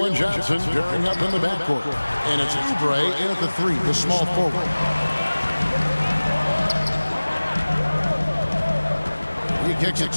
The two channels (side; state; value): both; inverted; correlation -1.00